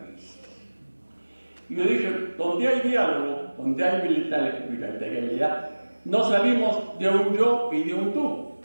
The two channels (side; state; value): both; inverted; correlation -1.00